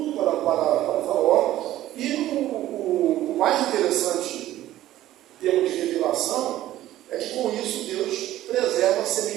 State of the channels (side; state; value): left; quieter; 14.1 dB